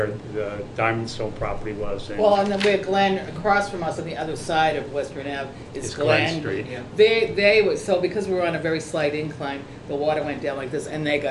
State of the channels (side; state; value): both; identical; correlation 1.00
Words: the Diamond Stone property was. Well, and then where Glen, across from us on the other side of Western Ave, is It's Glen Street. Yeah. They were, so because we were on a very slight incline, the water went down like this, and they